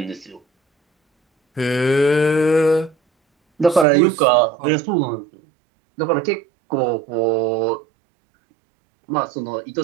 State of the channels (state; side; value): drops out; left; at 3.9 s